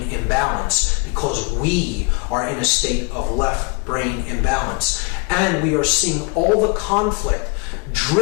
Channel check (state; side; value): quieter; right; 31.6 dB